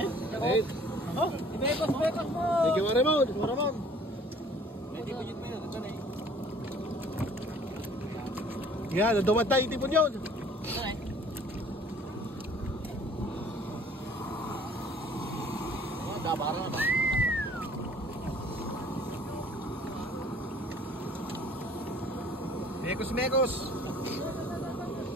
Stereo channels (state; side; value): normal; both; correlation 0.54